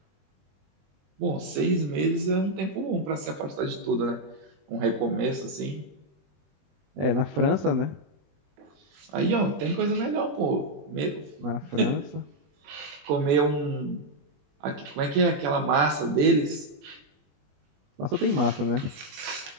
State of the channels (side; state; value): left; late; 21 ms